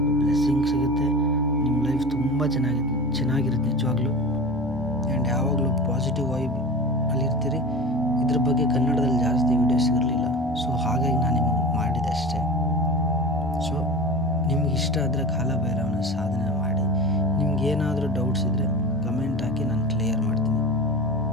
ಬ್ಲೆಸ್ಸಿಂಗ್ ಸಿಗುತ್ತೆ. ನಿಮ್ಮ ಲೈಫ್ ತುಂಬ ಚೆನ್ನಾಗಿರುತ್ತೆ ನಿಜವಾಗ್ಲೂ. ಆ್ಯಂಡ್ ಯಾವಾಗಲೂ ಪಾಸಿಟಿವ್ ವೈಬ್ ಅಲ್ಲಿರ್ತೀರಿ. ಇದ್ರ ಬಗ್ಗೆ ಕನ್ನಡದಲ್ಲಿ ಜಾಸ್ತಿ ವೀಡಿಯೋಸ್ ಇರಲಿಲ್ಲ, ಸೊ ಹಾಗಾಗಿ ನಾನು ನಿಮಗೆ ಮಾಡಿದೆ ಅಷ್ಟೇ. ಸೊ ನಿಮ್ಗೆ ಇಷ್ಟ ಆದರೆ ಕಾಲಭೈರವನ ಸಾಧನೆ ಮಾಡಿ. ನಿಮ್ಗೇನಾದರೂ ಡೌಟ್ಸ್ ಇದ್ದರೆ ಕಮೆಂಟ್ ಹಾಕಿ, ನಾನು ಕ್ಲಿಯರ್ ಮಾಡ್ತೀನಿ.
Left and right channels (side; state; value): both; normal; correlation 0.31